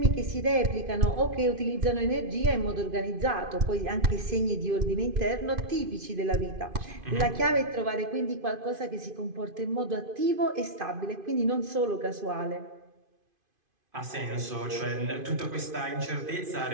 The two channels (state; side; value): late; left; 2.5 ms